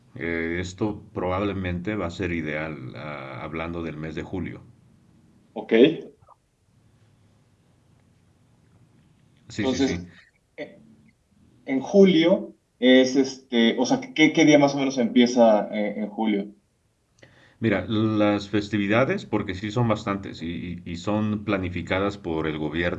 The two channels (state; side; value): identical; both; correlation 1.00